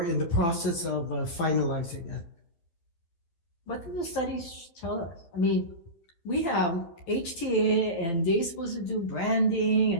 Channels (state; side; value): late; right; 12 ms